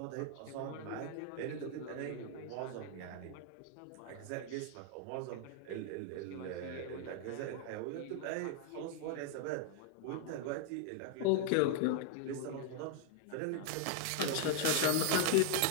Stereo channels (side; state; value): both; different; correlation 0.00